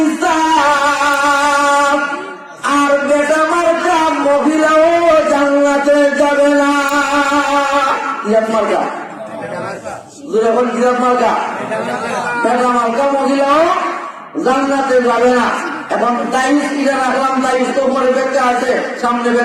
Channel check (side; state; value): both; identical; correlation 1.00